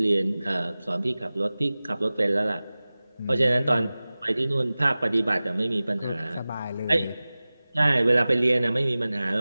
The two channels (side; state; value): both; inverted; correlation -0.98